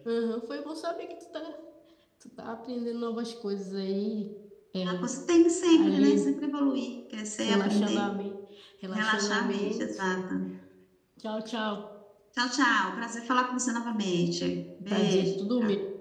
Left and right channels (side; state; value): both; identical; correlation 1.00